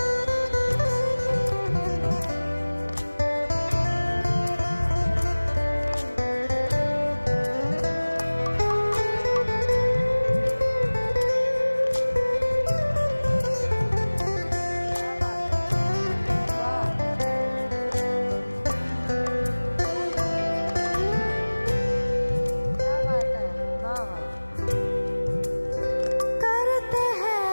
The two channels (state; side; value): inverted; both; correlation -1.00